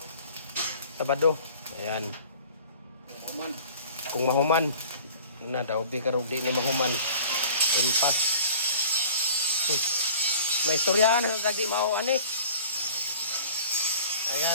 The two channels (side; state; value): both; inverted; correlation -0.46